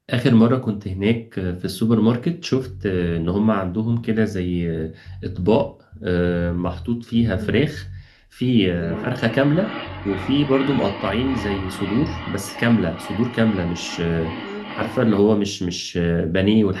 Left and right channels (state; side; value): identical; both; correlation 1.00